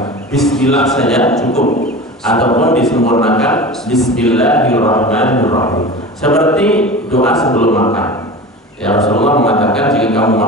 bismillah saja cukup, ataupun disempurnakan bismillahirrahmanirrahim. Seperti doa sebelum makan. Ya, Rasulullah mengatakan jika kamu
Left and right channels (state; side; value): normal; both; correlation 0.33